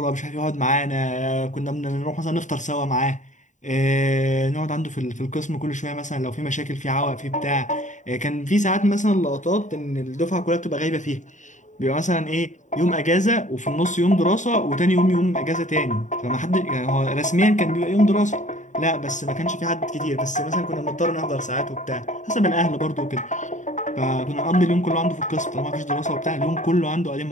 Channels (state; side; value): late; right; 0.36 ms